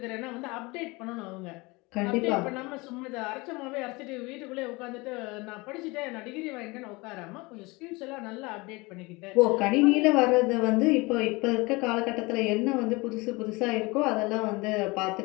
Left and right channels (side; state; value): right; quieter; 24.4 dB